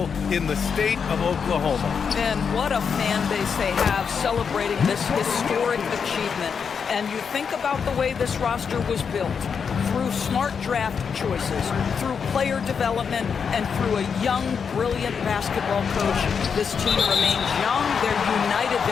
in the state of Oklahoma. And what a fan base they have celebrating this historic achievement. And you think about the way this roster was built, through smart draft choices, through player development, and through a young, brilliant basketball coach. This team remains young, they're united,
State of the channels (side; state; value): right; quieter; 6.4 dB